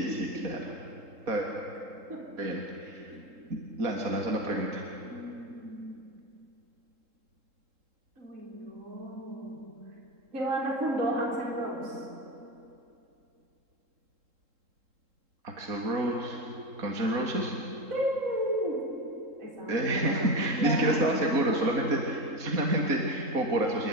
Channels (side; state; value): left; late; 3.7 ms